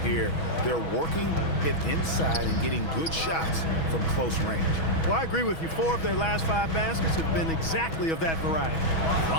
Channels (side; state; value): right; late; 6.2 ms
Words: They're working it inside and getting good shots from close range. Well, I agree with you. 4 of their last 5 baskets have been exactly of that variety.